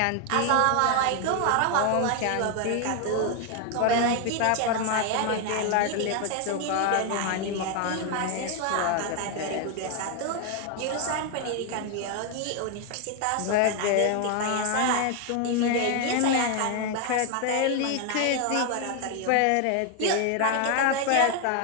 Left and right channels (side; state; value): both; different; correlation 0.01